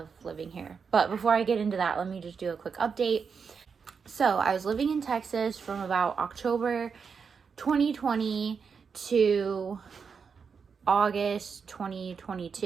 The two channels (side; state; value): left; quieter; 5.9 dB